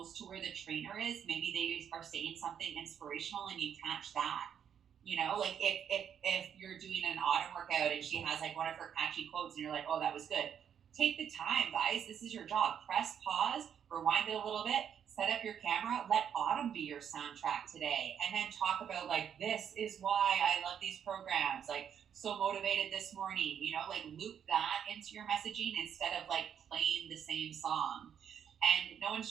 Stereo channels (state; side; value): quieter; left; 8.5 dB